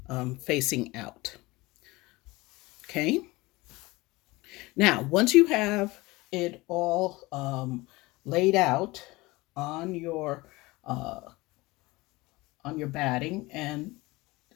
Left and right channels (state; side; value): quieter; right; 21.6 dB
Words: facing out. Okay. Now, once you have it all laid out on your uh, on your batting and